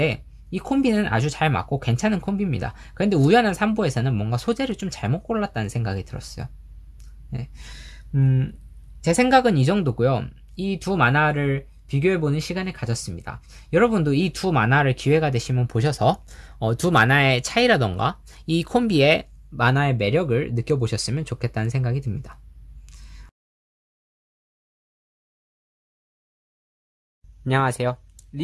이 콤비는 아주 잘 맞고 괜찮은 콤비입니다. 그런데 우연한 산보에서는 뭔가 소재를 좀 잘못 골랐다는 생각이 들었어요. 네. 제 생각은 이 정도고요. 이 두 만화를 비교해보는 시간을 가졌습니다. 여러분도 이 두 만화를 기회가 되시면 보셔서 두 만화의 차이라던가 이 콤비의 만화의 매력을 느껴보셨으면 좋겠다는 생각이 듭니다. 안녕하세요.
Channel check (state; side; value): identical; both; correlation 1.00